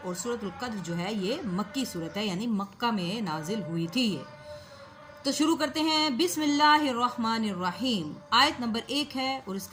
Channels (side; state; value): both; identical; correlation 1.00